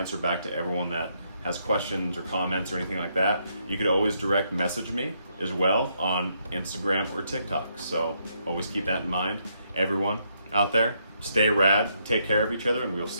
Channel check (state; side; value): inverted; both; correlation -0.76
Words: back to everyone that has questions or comments or anything like that. You could always direct message me as well on Instagram or TikTok. So always keep that in mind. Everyone out there, stay rad, take care of each other, and we'll